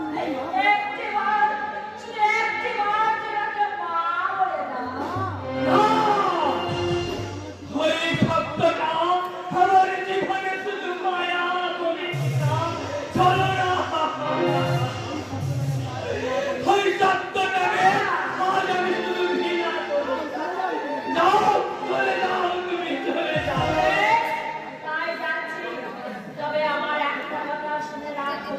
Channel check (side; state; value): both; identical; correlation 1.00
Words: একটিবার শুধু একটিবার তোমাকে মা বলে দাও। ওই শব্দটা আমার জীবনে শুধু মায়া বলে না, চলো না। ওই শব্দটাকে আজ আমি শুধু ঘৃণা করি। যাও চলে যাও, তুমি চলে যাও। তাই যাচ্ছি। তবে আমার একটা কথা শুনে রাখো